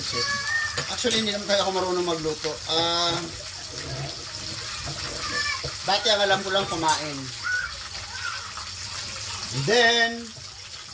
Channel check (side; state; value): both; identical; correlation 1.00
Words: Actually, hindi naman tayo ako marunong magluto. Dati ang alam ko lang kumain. And then,